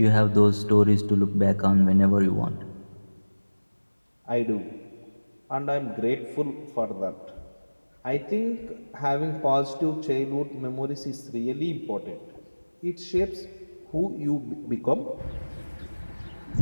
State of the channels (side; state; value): both; inverted; correlation -1.00